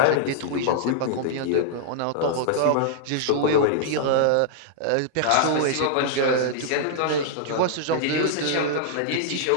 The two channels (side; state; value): both; different; correlation -0.01